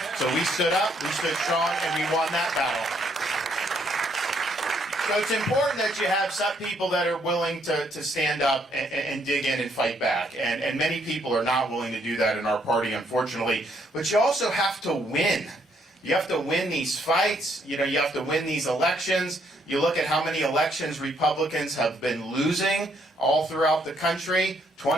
So we stood up, we stood strong, and we won that battle. So it's important that you have some people that are willing to stand up and dig in and fight back. And many people are not willing to do that in our party, unfortunately. But you also have to win. You have to win these fights. You know, you have to win these elections. You look at how many elections Republicans have been losing all throughout the country.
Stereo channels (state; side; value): normal; both; correlation 0.71